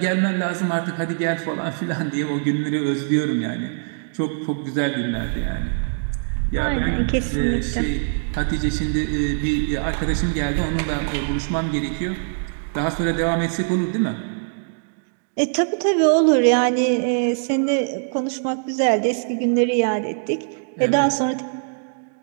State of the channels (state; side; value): silent; left; digital silence